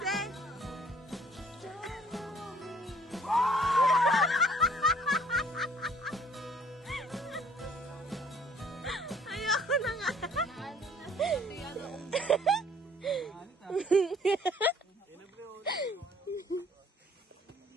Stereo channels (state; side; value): normal; both; correlation 0.59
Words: Ayoko na nga.